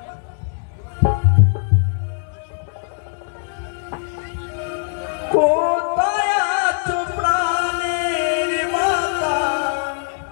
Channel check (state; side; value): silent; right; digital silence